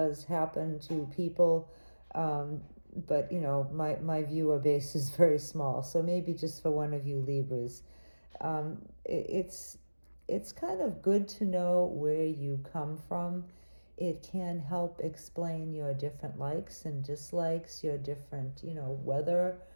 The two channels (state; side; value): inverted; both; correlation -1.00